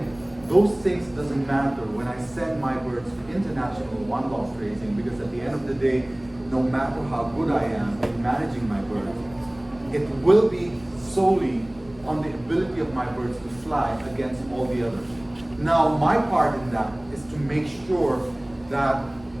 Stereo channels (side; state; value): right; noise; rumble, 24 dB below the sound